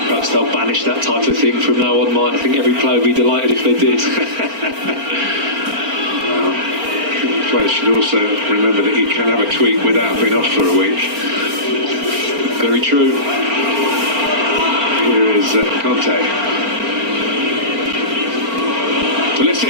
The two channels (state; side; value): late; left; 4.4 ms